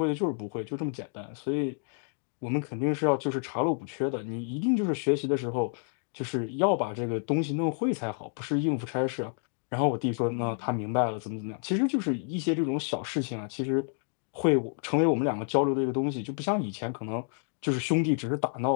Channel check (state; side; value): silent; right; 56 dB below the other